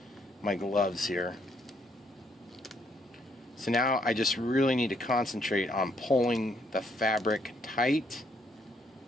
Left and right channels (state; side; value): normal; both; correlation 0.71